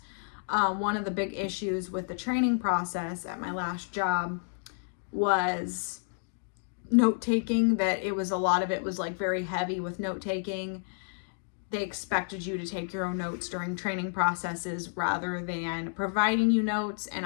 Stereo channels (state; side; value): silent; right; digital silence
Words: one of the big issues with the training process at my last job was note-taking, that a lot of it was like very heavy with note-taking. They expected you to take your own notes during training processes rather than providing you notes. And